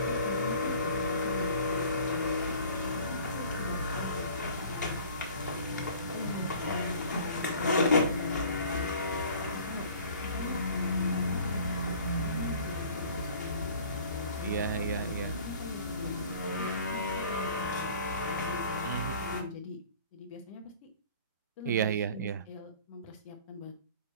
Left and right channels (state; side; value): inverted; both; correlation -0.49